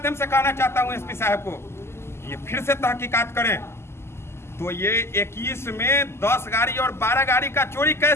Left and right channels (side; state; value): right; late; 0.12 ms